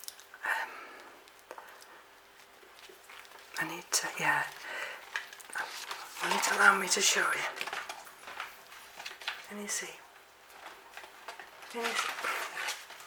I need to, yeah. Will it allow me to show you? Can you see? Can you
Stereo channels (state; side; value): identical; both; correlation 1.00